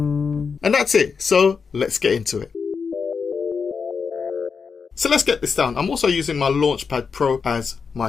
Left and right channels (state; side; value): quieter; right; 5.6 dB